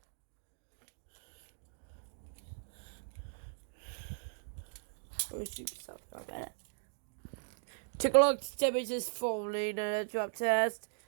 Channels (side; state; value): left; silent; digital silence